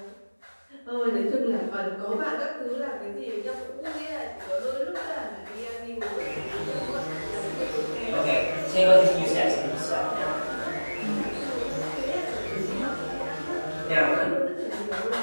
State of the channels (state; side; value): inverted; both; correlation -1.00